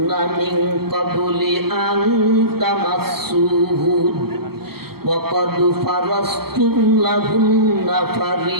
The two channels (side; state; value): left; late; 0.95 ms